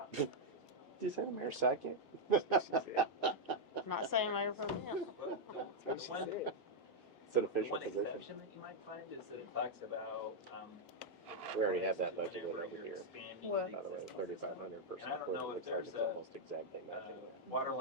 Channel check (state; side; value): normal; both; correlation -0.01